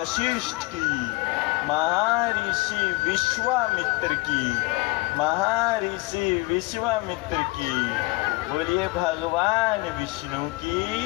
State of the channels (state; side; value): quieter; right; 23.3 dB